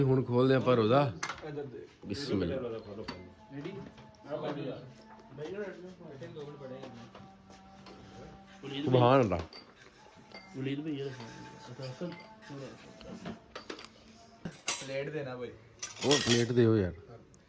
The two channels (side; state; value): both; identical; correlation 1.00